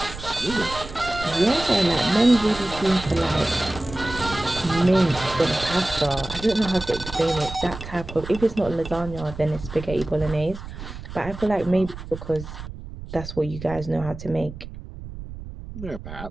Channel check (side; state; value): right; noise; rumble, 12 dB below the sound